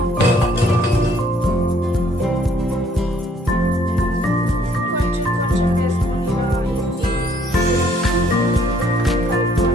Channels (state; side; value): normal; both; correlation 0.64